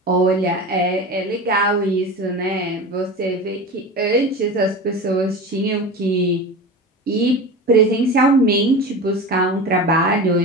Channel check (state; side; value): normal; both; correlation 0.29